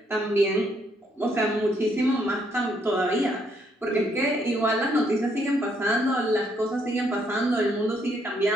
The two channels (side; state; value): both; normal; correlation 0.72